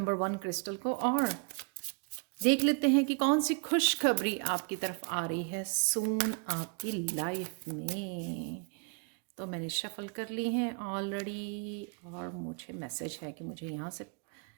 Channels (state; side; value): quieter; left; 37.5 dB